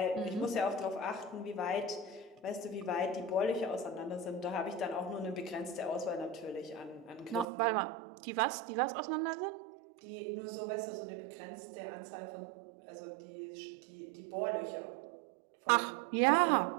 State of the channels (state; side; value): drops out; left; at 7.5 s